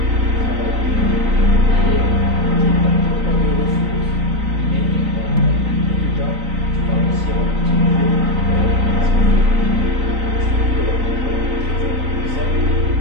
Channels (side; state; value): left; late; 3.9 ms